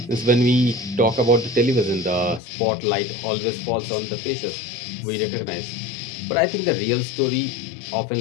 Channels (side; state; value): right; drops out; at 2.4 s